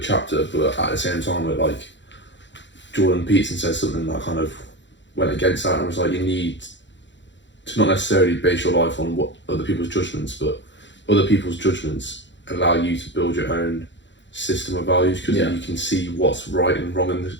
but at the same time, it, like, Jordan Peterson said something that kind of went against that, and was like, you need to not necessarily base your life on what other people's judgments, but other people's judgments allow you to build your own system of values, because you can see what's right and wrong in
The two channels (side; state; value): right; late; 0.53 ms